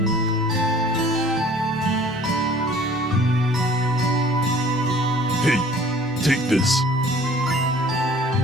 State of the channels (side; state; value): both; normal; correlation 0.51